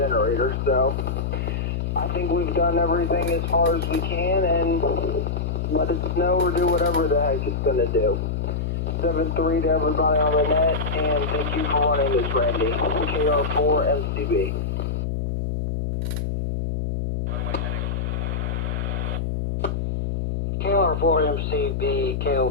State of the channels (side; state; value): left; noise; hum, 1 dB below the sound